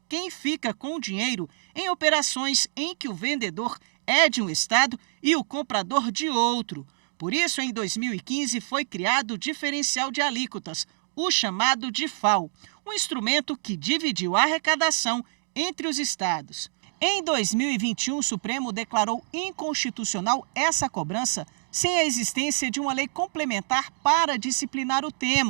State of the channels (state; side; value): silent; left; digital silence